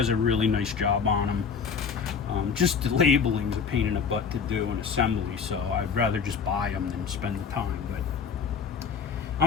a really nice job on them. Just the labeling's a pain in the butt to do in assembly, so I'd rather just buy them than spend the time. But I'm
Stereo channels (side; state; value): right; quieter; 6.1 dB